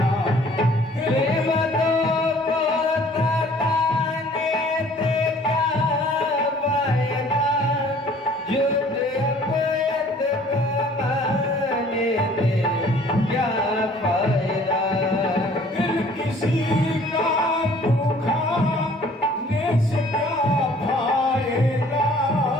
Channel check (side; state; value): both; normal; correlation 0.54